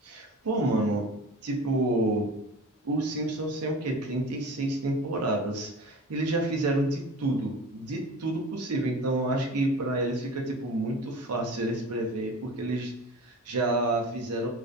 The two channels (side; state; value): both; normal; correlation 0.37